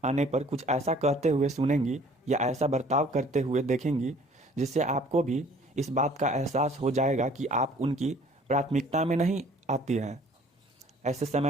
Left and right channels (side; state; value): both; normal; correlation 0.54